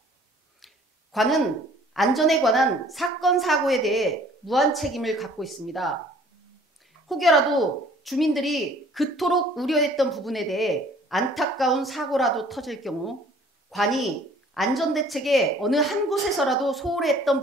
관은 안전에 관한 사건 사고에 대해 무한 책임을 갖고 있습니다. 혹여라도 주민들이 그토록 우려했던 부분에 대해 안타까운 사고라도 터질 경우 관이 안전대책에 어느 한 곳에서라도 소홀히 했던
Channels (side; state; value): both; normal; correlation 0.54